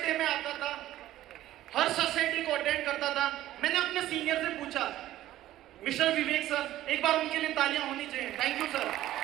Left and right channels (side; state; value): left; quieter; 14.1 dB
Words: डे में आता था, हर सक्सेस डे को अटेंड करता था। मैंने अपने सीनियर से पूछा, मिस्टर विवेक सर, एक बार उनके लिए तालियां होनी चाहिए, थैंक यू सर।